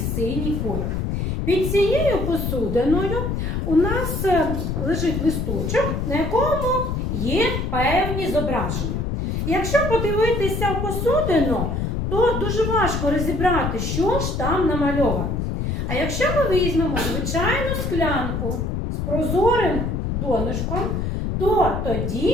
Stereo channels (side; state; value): left; noise; rumble, 1 dB below the sound